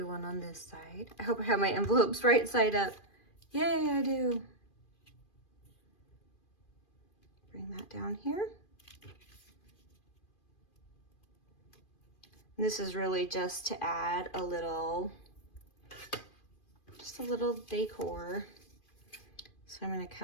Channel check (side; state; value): right; late; 2.4 ms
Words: one on this side. I hope I have my envelopes right side up. Yay, I do. Bring that down here. And this is really just to add a little, just a little decor. So I'm going to